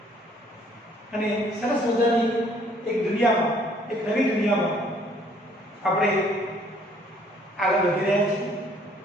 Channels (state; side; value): normal; both; correlation 0.61